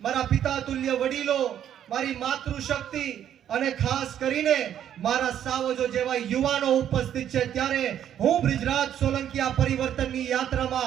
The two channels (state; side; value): quieter; left; 10.1 dB